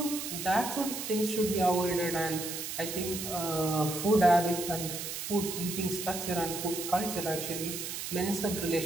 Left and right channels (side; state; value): right; noise; hiss, 5 dB below the sound